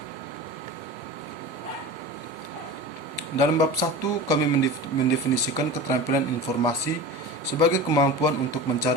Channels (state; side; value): normal; both; correlation 0.31